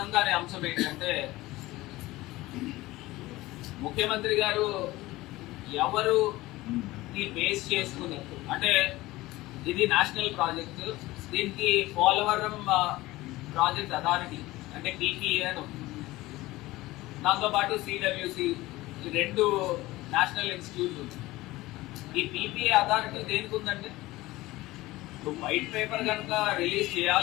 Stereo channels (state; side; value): quieter; right; 18.6 dB